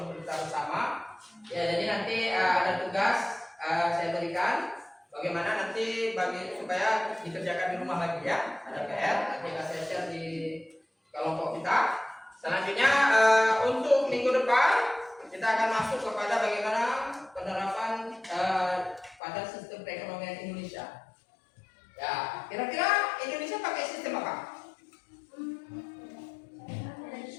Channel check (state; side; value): drops out; right; at 19.2 s